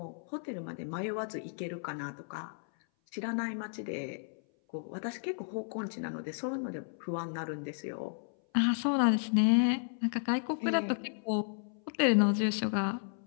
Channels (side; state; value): right; silent; 56 dB below the other